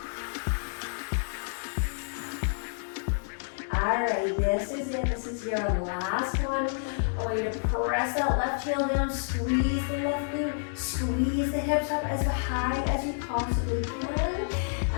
Alright, this is it. This is your last one. I want you to press that left heel down, squeeze the left glute, squeeze the hips up as high as you possibly can.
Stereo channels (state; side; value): silent; right; digital silence